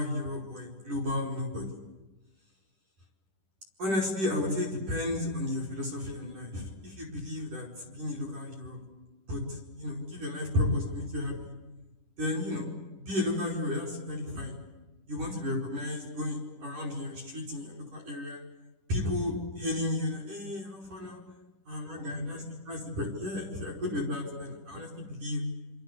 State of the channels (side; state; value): left; late; 10 ms